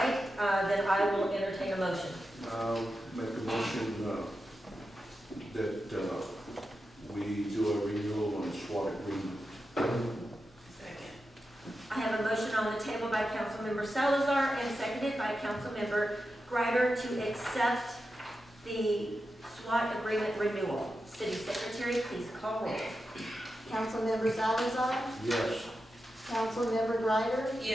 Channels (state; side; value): normal; both; correlation 0.90